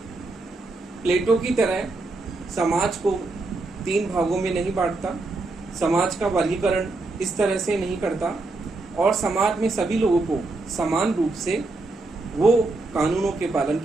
प्लेटो की तरह समाज को 3 भागों में नहीं बांटता, समाज का वर्गीकरण इस तरह से नहीं करता और समाज में सभी लोगों को समान रूप से वो कानूनों के पालन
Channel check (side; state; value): left; quieter; 3.3 dB